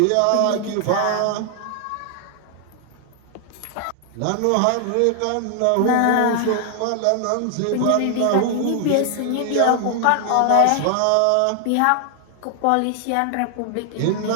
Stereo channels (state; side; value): different; both; correlation 0.00